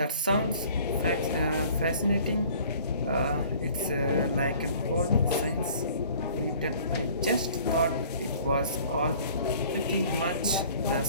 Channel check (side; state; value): both; inverted; correlation -0.52